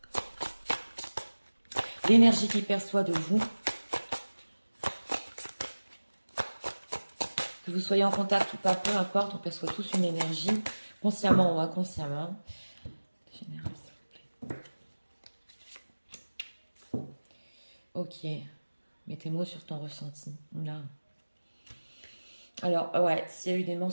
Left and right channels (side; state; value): both; inverted; correlation -1.00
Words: L'énergie qu'il perçoit de vous. Que vous soyez en contact ou pas, peu importe, on perçoit tous une énergie, consciemment ou inconsciemment. Général, s'il vous plaît. Ok. Mets tes mots sur ton ressenti. Là. Alors, ouais, s'il y a eu des